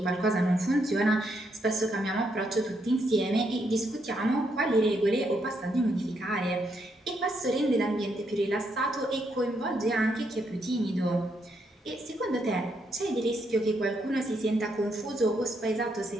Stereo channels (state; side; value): normal; both; correlation 0.77